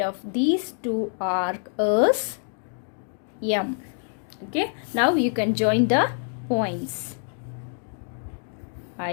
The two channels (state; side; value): silent; right; 61 dB below the other